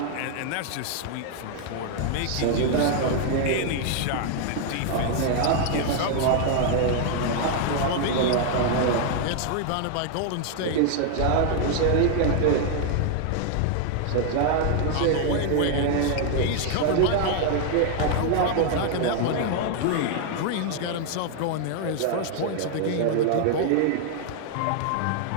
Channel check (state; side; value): different; both; correlation 0.00